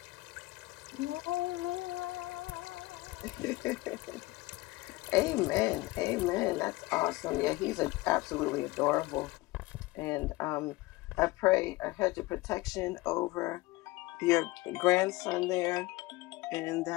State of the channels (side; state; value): right; quieter; 20.7 dB